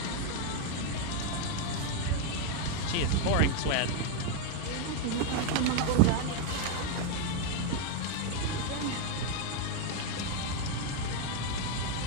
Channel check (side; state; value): both; different; correlation 0.01